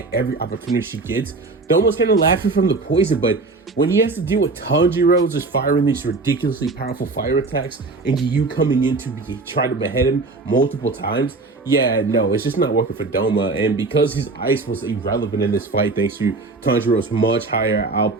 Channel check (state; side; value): quieter; left; 3.6 dB